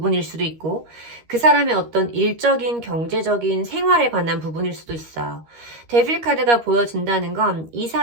수도 있고 그 사람의 어떤 일적인 경제적인 생활에 관한 부분일 수도 있어요. 데빌 카드가 보여진다는 건 이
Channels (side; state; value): left; late; 13 ms